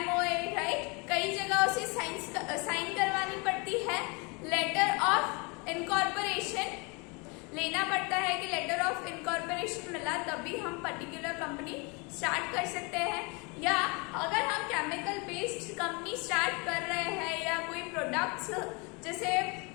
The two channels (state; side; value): quieter; right; 30.0 dB